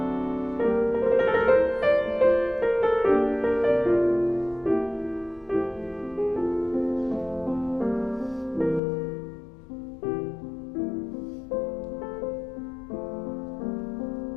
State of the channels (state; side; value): drops out; right; at 8.8 s